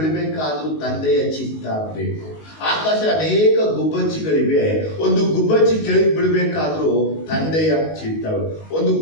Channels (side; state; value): right; late; 19 ms